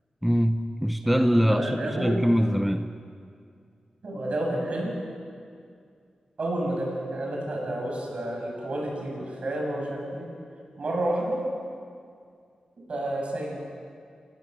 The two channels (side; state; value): both; normal; correlation 0.95